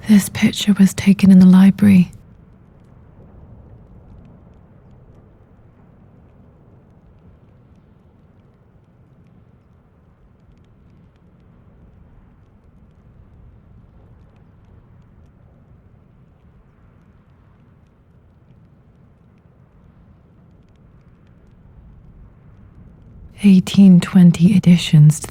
This picture was taken in the library. (1820) additions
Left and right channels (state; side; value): identical; both; correlation 1.00